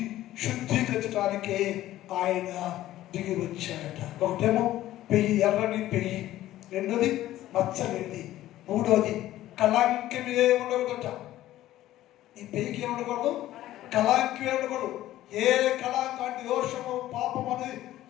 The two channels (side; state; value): right; quieter; 14.4 dB